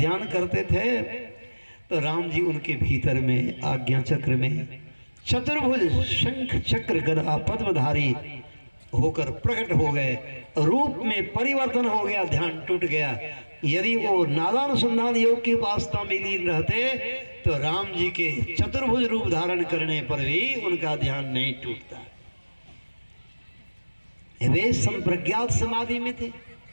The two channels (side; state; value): both; inverted; correlation -1.00